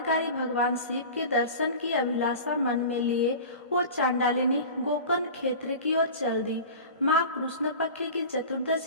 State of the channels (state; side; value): inverted; both; correlation -0.35